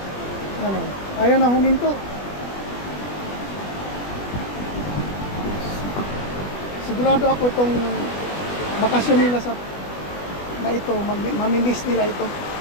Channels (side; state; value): right; late; 20 ms